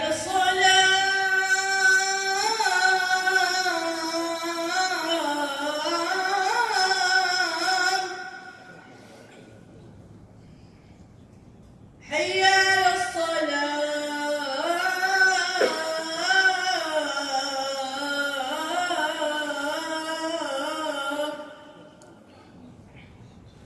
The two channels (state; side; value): identical; both; correlation 1.00